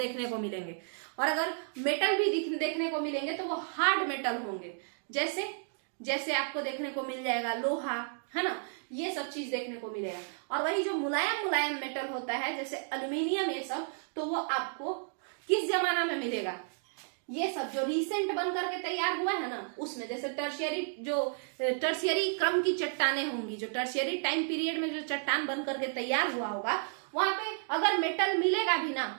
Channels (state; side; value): silent; left; 56 dB below the other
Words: को मिलेंगे। और अगर मेटल भी देखने को मिलेंगे तो वो हार्ड मेटल होंगे। जैसे जैसे आपको देखने को मिल जाएगा लोहा, है ना, ये सब चीज देखने को मिलेगा। और वही जो मुलायम मुलायम मेटल होता है जैसे एल्यूमिनियम, ये सब, तो वो आपको किस जमाना में मिलेगा, ये सब जो रिसेंट बन करके तैयार हुआ है ना, उसमें। जैसे टर्शियरी क्रम की चट्टानें होंगी, जो टर्शियरी टाइम पीरियड में जो चट्टान बन करके तैयार हुआ होगा, वहां पे अगर मेटल मिलेगा भी ना,